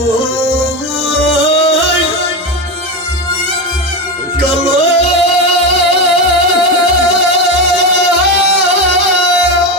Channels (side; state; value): both; normal; correlation 0.16